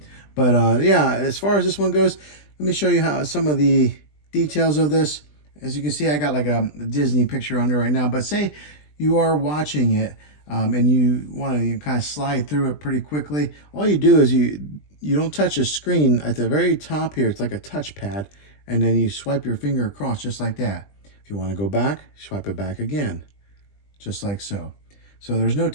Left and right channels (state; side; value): late; right; 20 ms